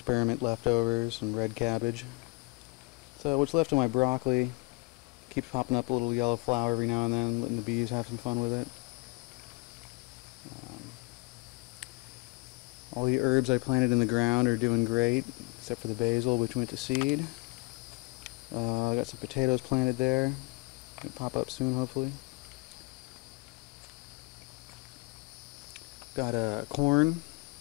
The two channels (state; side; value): quieter; right; 26.0 dB